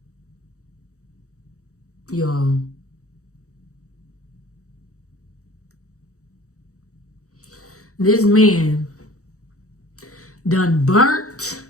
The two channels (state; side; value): late; right; 0.65 ms